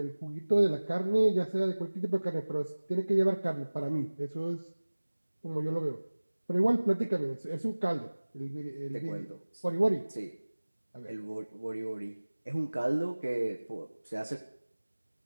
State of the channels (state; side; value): inverted; both; correlation -1.00